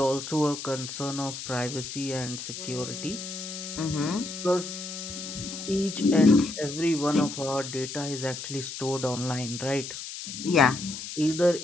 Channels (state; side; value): noise; left; hiss, 8 dB below the sound